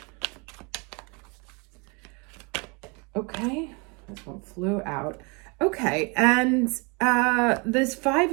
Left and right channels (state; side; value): quieter; left; 30.9 dB